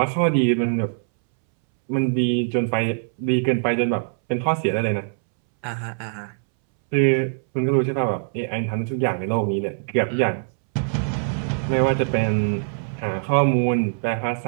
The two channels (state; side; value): silent; left; 64 dB below the other